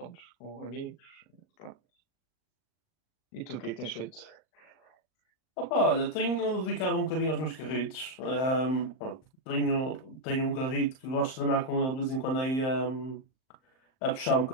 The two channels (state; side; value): late; right; 38 ms